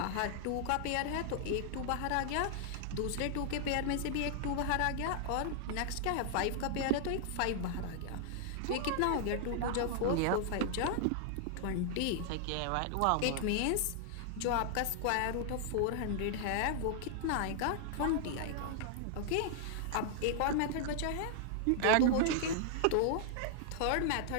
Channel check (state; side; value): different; both; correlation -0.01